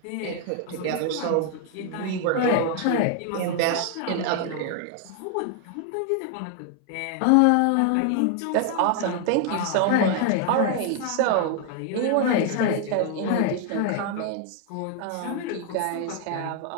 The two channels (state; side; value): different; both; correlation 0.00